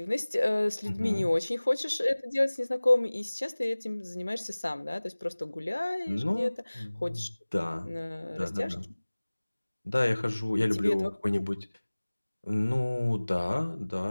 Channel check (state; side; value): inverted; both; correlation -1.00